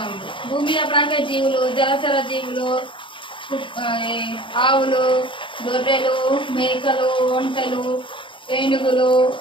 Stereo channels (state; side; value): late; right; 0.24 ms